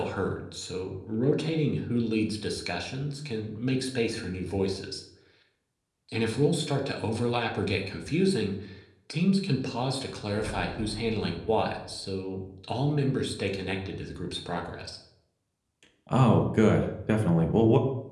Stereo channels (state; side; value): identical; both; correlation 1.00